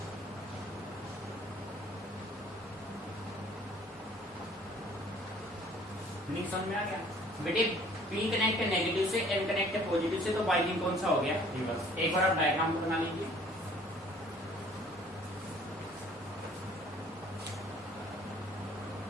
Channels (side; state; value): both; normal; correlation 0.55